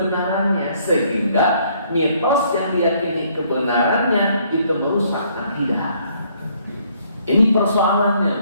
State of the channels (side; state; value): both; inverted; correlation -0.65